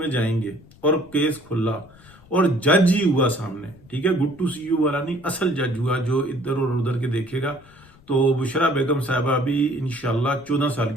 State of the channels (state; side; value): noise; left; rumble, 26 dB below the sound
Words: जाएंगे और केस खुला और जज ही हुआ सामने, ठीक है, गुड टू सी यू वाला नहीं, असल जज हुआ जो इधर और उधर के देखेगा, तो बुशरा बेगम साहबा भी इंशाल्लाह 14 साल